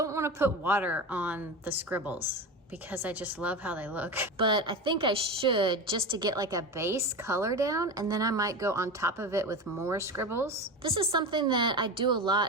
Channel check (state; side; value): normal; both; correlation 0.25